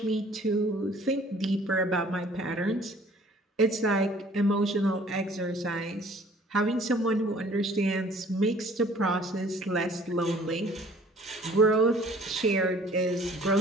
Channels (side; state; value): both; normal; correlation 0.54